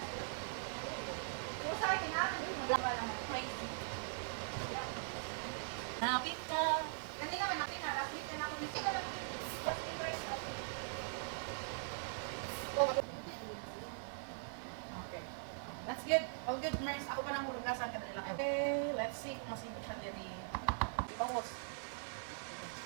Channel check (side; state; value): left; silent; 50 dB below the other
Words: Yung sa akin namin, yung magla lang. Crazy. Hanapin ka. Kanina ka natin, last week na ako. Hindi ka lang just in price of. Okay. That's good. All good, Mars. Ako pa nang kurugasan ka nila. Okay, let's see kung masipit siya diri. Almost.